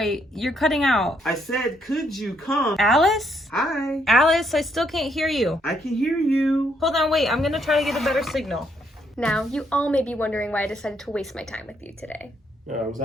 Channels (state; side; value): normal; both; correlation 0.73